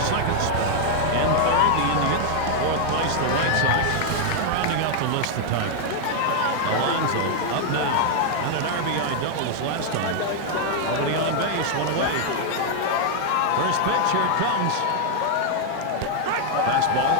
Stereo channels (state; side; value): different; both; correlation 0.00